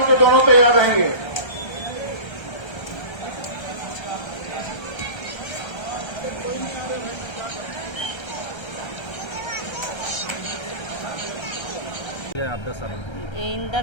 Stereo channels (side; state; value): right; late; 1.3 ms